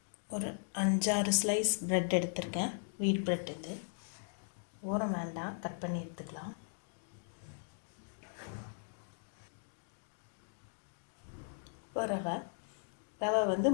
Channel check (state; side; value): silent; right; digital silence